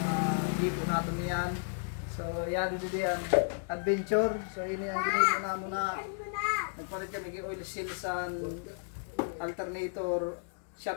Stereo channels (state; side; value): silent; right; digital silence